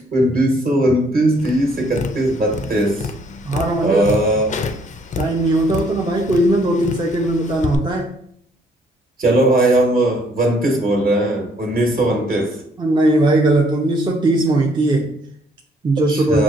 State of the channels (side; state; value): both; normal; correlation 0.66